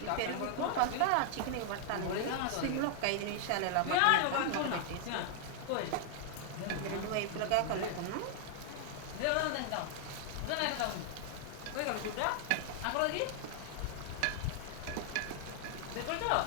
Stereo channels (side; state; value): both; different; correlation -0.01